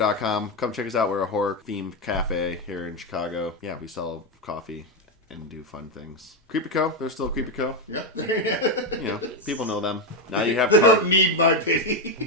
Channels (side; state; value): both; normal; correlation 0.08